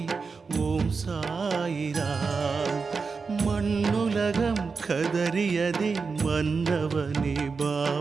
ஓம் சாயிராம். மண்ணுலகம் கதறியதே மன்னவனே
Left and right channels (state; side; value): quieter; left; 4.8 dB